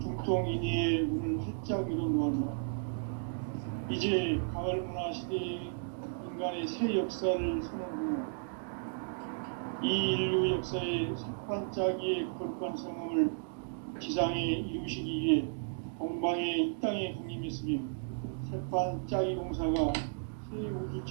중통인의의 문을 활짝 열어놓았노라. 이제 가을 문화 시대의 인간의 새 역사를 선언하며 이 인류 역사의 색반짝이의 거룩한 성함을 지상에 이루시기 위해 동방의 이 땅에 강림했으며 색반짝이 공사가 새 우주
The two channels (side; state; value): left; silent; digital silence